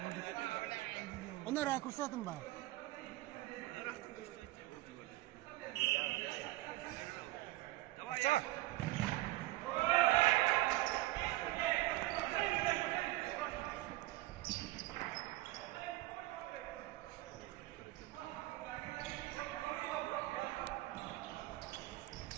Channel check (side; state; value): left; quieter; 18.1 dB